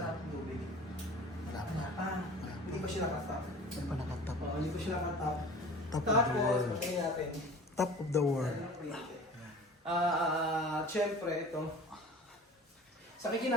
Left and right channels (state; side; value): normal; both; correlation 0.41